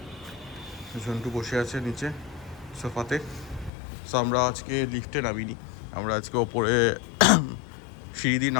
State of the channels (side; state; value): right; drops out; at 3.7 s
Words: ঝন্টু বসে আছে নিচে সোফাতে। সো আমরা আজকে লিফটে নামিনি, আমরা আজকে ওপরে সিঁড়ি দিয়ে